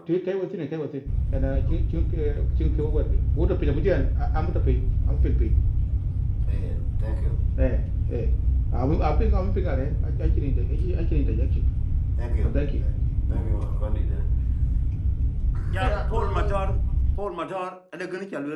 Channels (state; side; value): identical; both; correlation 1.00